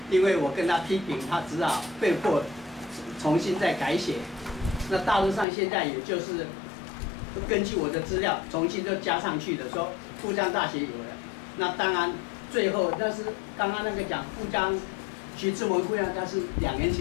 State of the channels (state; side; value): drops out; right; at 5.5 s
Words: 因为我跟他批评，他只好被迫重新再改写。那大陆上现在也就是根据我的资料重新都加上去的，说复旦大学有了。那当然最后那是刚刚那个讲徐志摩复旦，他是2年